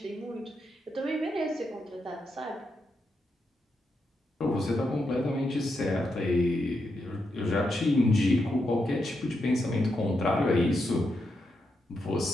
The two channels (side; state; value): both; normal; correlation 0.83